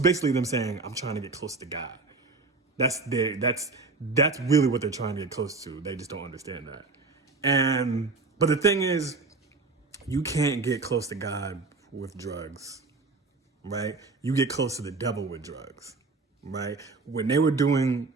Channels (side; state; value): left; quieter; 3.8 dB